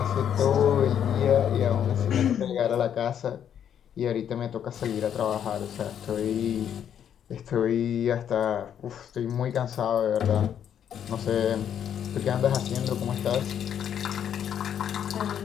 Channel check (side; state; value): right; quieter; 9.1 dB